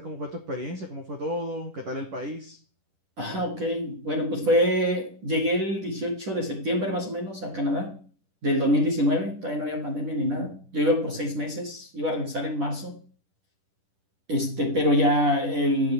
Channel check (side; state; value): left; late; 10 ms